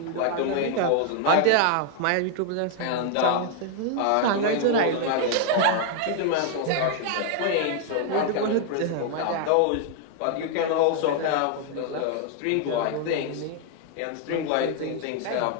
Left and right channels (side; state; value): both; different; correlation 0.00